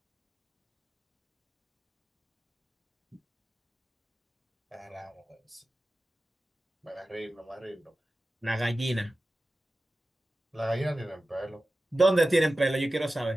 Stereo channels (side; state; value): both; normal; correlation 0.95